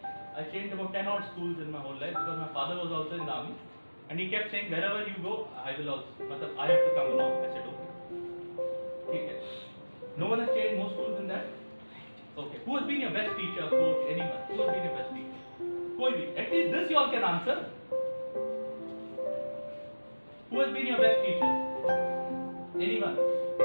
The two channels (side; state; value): both; inverted; correlation -1.00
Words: I changed about 10 odd schools in my whole life because my father was also in the army and he kept saying wherever you go, I will also, I have to come along. I said okay. No one has changed more schools than that. Okay. Who has been your best teacher, coach, anyone? Who has been your best teacher? At least this you all can answer. Who has been your best teacher? Anyone?